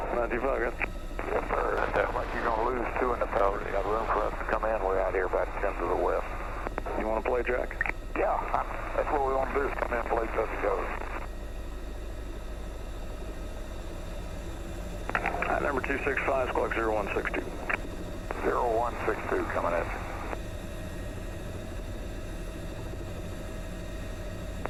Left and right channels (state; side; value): identical; both; correlation 1.00